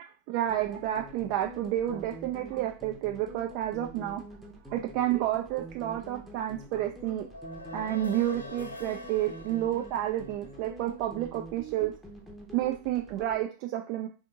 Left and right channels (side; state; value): left; quieter; 11.4 dB